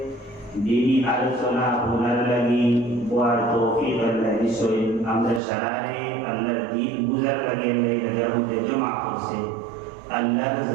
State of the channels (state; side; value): drops out; left; at 5.4 s